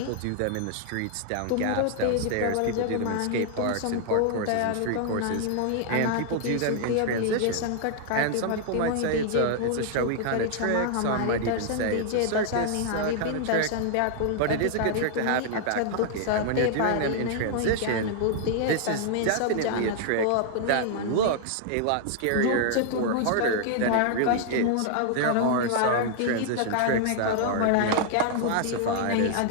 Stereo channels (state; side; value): different; both; correlation 0.00